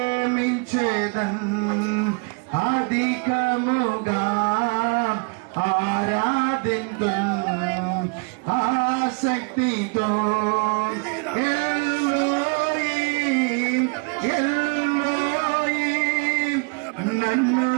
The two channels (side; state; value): left; quieter; 34.1 dB